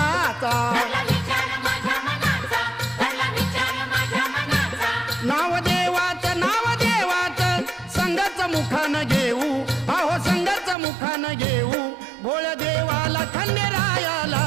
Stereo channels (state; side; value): drops out; left; at 10.8 s